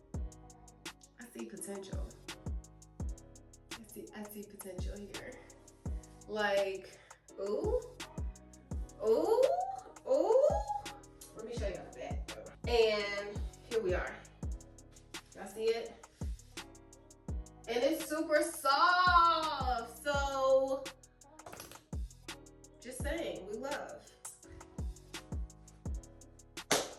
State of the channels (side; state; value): both; identical; correlation 1.00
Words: see potential. I see potential here. Like, ooh. Let me show you the back though. And here we are. Y'all see it? And it's super soft. So, just saying, we love.